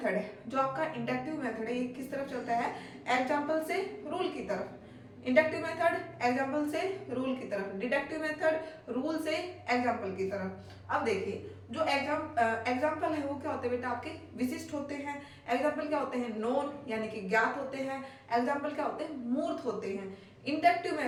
है, जो आपका इंडक्टिव मेथड है, ये किस तरफ चलता है, एग्जाम्पल से रूल की तरफ। इंडक्टिव मेथड एग्जाम्पल से रूल की तरफ, डिडक्टिव मेथड रूल से एग्जाम्पल की तरफ। अब देखिए जो एग्जाम्पल है वो क्या होते हैं बेटा आपके, विशिष्ट होते हैं। एग्जाम्पल क्या होते हैं, नोन यानी कि ज्ञात होते हैं। एग्जाम्पल क्या होते हैं, मूर्त होते हैं।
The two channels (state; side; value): identical; both; correlation 1.00